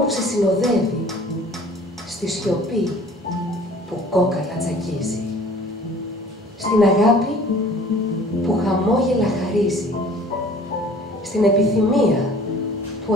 που σε συνοδεύει, στη σιωπή που κόκαλα τσακίζει, στην αγάπη που χαμόγελα χαρίζει, στην επιθυμία που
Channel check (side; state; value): both; normal; correlation 0.50